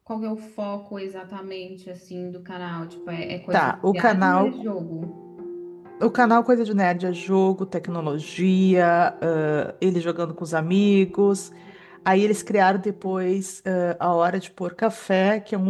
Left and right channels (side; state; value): both; identical; correlation 1.00